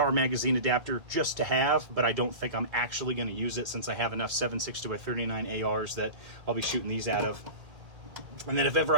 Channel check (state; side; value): late; left; 2.1 ms